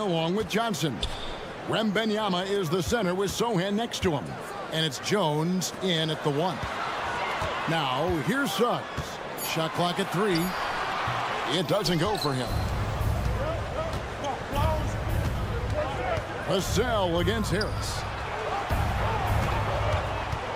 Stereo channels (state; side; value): identical; both; correlation 1.00